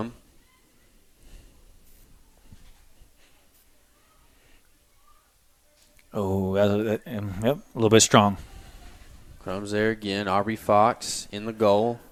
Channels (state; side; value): identical; both; correlation 1.00